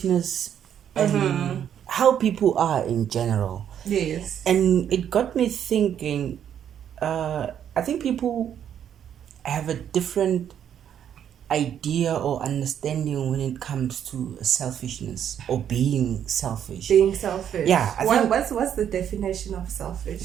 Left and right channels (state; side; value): quieter; left; 9.3 dB